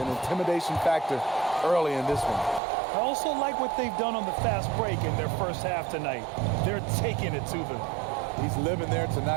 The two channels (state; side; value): drops out; left; at 2.6 s